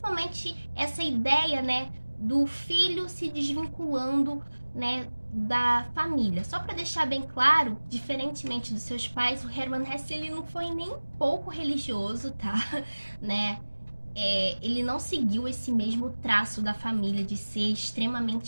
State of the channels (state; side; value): inverted; both; correlation -1.00